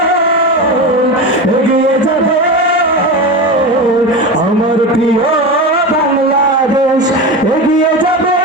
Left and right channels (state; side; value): normal; both; correlation 0.23